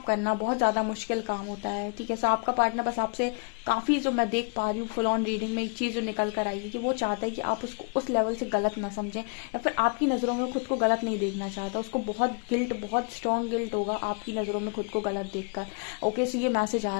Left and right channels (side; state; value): right; quieter; 36.0 dB